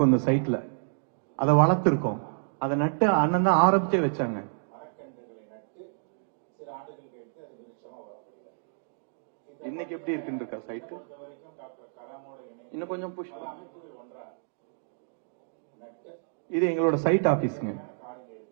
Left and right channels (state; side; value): silent; left; digital silence